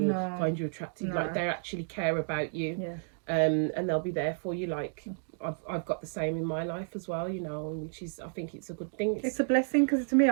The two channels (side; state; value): left; silent; 57 dB below the other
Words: find you attractive. Like, they actually care about you, and they'll be there for you. Like, I've got the same in my life as well, you know, which is, I think it's a good thing. It's a blessing, because to me,